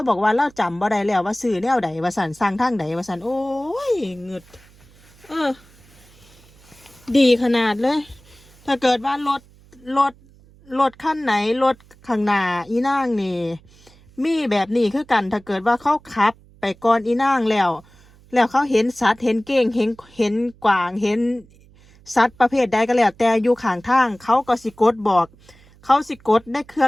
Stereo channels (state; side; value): noise; right; hum, 27 dB below the sound